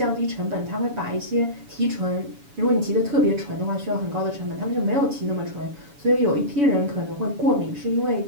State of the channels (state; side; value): late; left; 7.1 ms